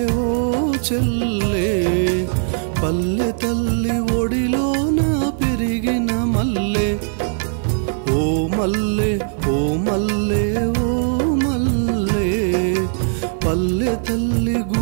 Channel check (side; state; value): left; silent; digital silence